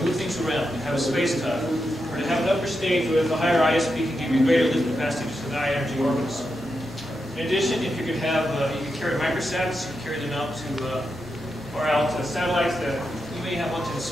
move things around, to have a space tug, or to have an upper stage where the higher ISP can give you greater lift capacity to the high energy orbits. In addition, if you could have, you could carry microsats, you could carry them out to, or out to satellites that you may have one to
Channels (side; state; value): both; normal; correlation 0.86